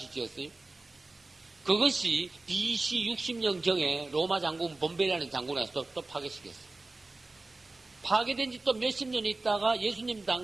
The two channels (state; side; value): quieter; left; 3.2 dB